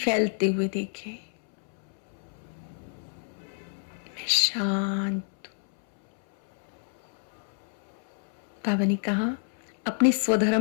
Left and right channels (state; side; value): silent; right; 59 dB below the other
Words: हुए देखें। मैं शांत। बाबा ने कहा अपने